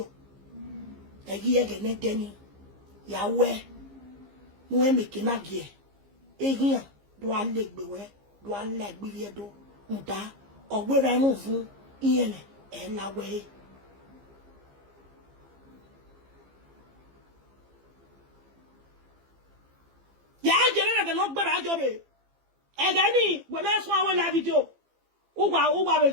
e gi ege ne deni ya we mu e meke na gie e gian do alegbe we do alegbe vie do nda ogbera mu fun iyen e la we ya jere na no gbera ajobe e ga ni we na so awon live video o wa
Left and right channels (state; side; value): late; left; 15 ms